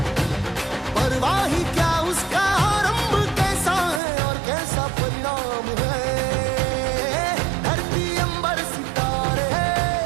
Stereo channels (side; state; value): left; drops out; at 4.0 s